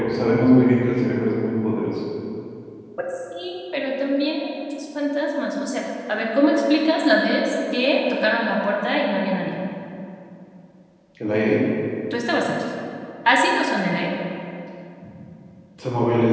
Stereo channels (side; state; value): both; identical; correlation 1.00